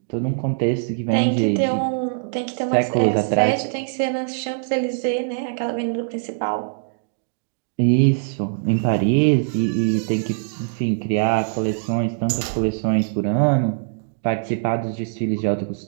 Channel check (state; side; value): silent; left; digital silence